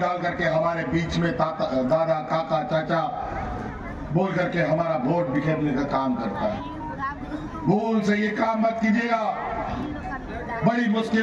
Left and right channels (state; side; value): identical; both; correlation 1.00